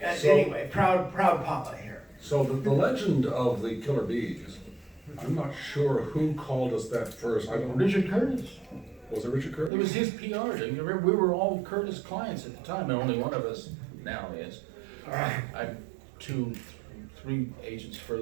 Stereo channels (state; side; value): drops out; left; at 9.7 s